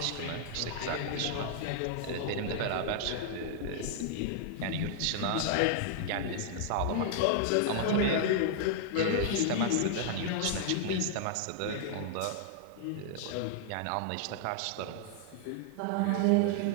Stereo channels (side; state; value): both; different; correlation 0.00